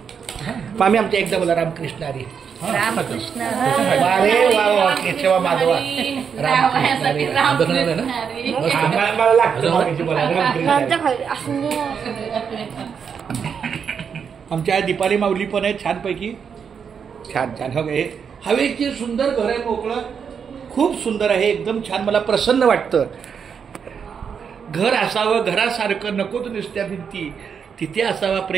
आम्ही आमच्या एकदा बोला रामकृष्ण हरी रामकृष्ण अरे वा वा केशवा माधवा रामकृष्ण हरी. मला लागतं आमच्या दीपाली माऊली पण आहे छानपैकी. छान छान हे हवेची सुंदर घर आहे, मोकळं, खूप सुंदर आहे, एकदम छान. मला प्रसन्न वाटतं. घर असावं घरासारखं, नकोच नुसत्या भिंती, तिथे असावा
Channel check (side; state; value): left; quieter; 6.8 dB